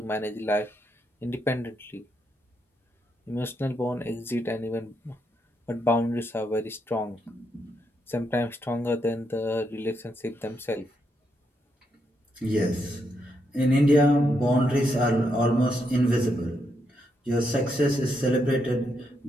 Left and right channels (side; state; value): both; normal; correlation 0.80